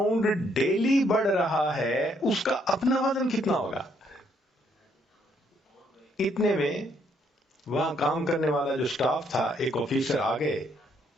ڈیلی بڑھ رہا ہے اس کا اپنا وزن کتنا ہوگا؟ اتنے میں وہاں کام کرنے والا جو سٹاف تھا، ایک آفیسر آ گئے.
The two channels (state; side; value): normal; both; correlation 0.70